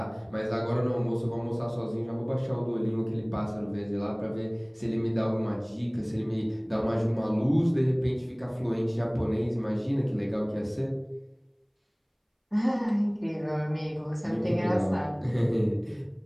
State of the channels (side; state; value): both; identical; correlation 1.00